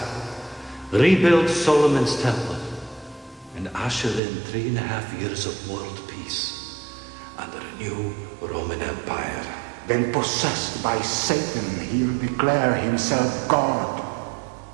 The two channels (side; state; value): left; drops out; at 4.2 s